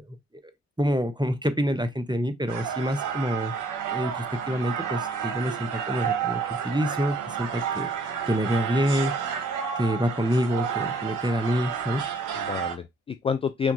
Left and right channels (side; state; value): both; normal; correlation 0.63